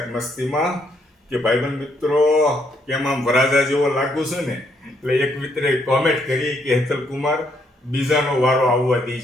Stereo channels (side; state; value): both; normal; correlation 0.72